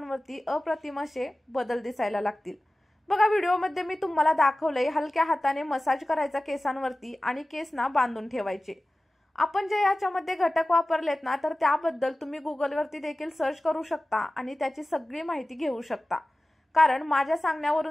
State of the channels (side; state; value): both; normal; correlation 0.96